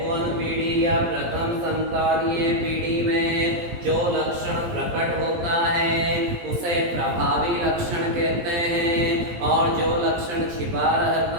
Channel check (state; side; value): late; left; 17 ms